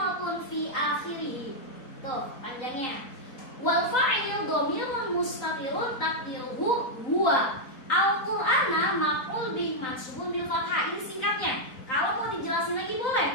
fi akhirih. Tuh, panjangnya. Wal fa'ilu dhamirun mustatirun taqdiruhu huwa. Al-Qur'ana maf'ul bih mansubun bil fathah. Ini singkatnya. Kalau mau dijelasin lagi boleh.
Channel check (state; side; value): late; right; 3.9 ms